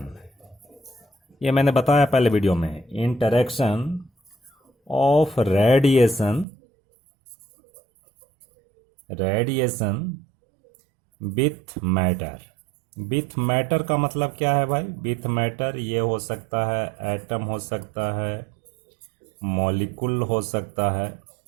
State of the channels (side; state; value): left; drops out; at 6.5 s